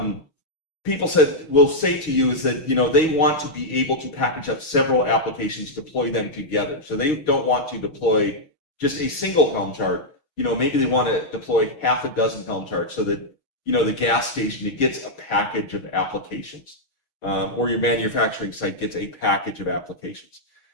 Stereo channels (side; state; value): right; late; 6.3 ms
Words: people will say to you is that they want to be able to package up several applications, deploy them together. So they don't want to deploy just a single Helm chart. Maybe they want to deploy half a dozen Helm charts so that the gas station, it gets a package of applications, or your manufacturing site gets a package of applications.